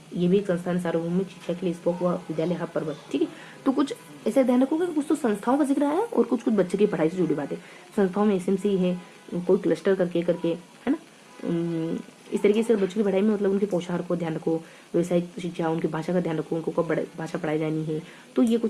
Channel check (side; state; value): both; identical; correlation 1.00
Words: ये भी एक संस्थान, सार्वभौमिक शिक्षा के लिए स्पोक व विद्यालय हब पर बल। ठीक है, तो कुछ ऐसे ध्यान रखोगे कुछ तो संस्थाओं का जिक्र आया और कुछ कुछ बच्चे की पढ़ाई से जुड़ी बातें। संस्थाओं में एसएमसी है, कोई क्लस्टर करके है ना। इस तरीके से बच्चों की पढ़ाई में मतलब उनके पोशाक को ध्यान रखो, व्यवसायिक शिक्षा, उनकी भाषा का ध्यान रखो, उनको कब भाषा पढ़ाई जानी है, तो ये